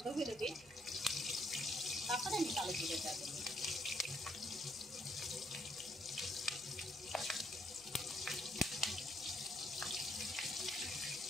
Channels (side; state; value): right; noise; hum, 23 dB below the sound